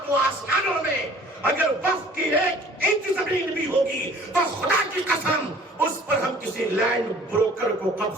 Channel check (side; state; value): both; normal; correlation 0.51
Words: آسمانوں میں اگر وقف کی 1 انچ زمین بھی ہوگی تو خدا کی قسم اس پر ہم کسی لینڈ بروکر کو